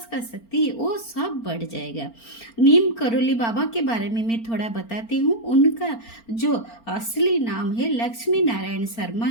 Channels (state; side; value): late; right; 4.4 ms